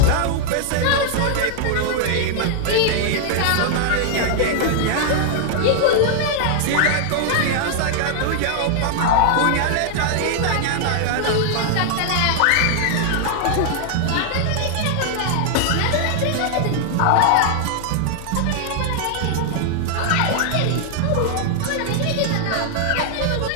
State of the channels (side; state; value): both; different; correlation 0.00